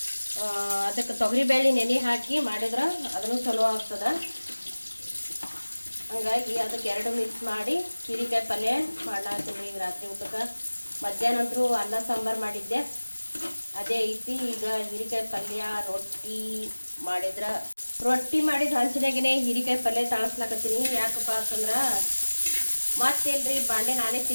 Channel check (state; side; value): inverted; both; correlation -1.00